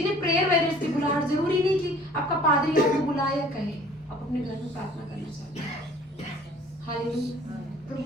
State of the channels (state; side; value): normal; both; correlation 0.51